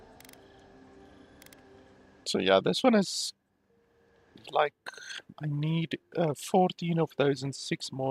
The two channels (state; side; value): identical; both; correlation 1.00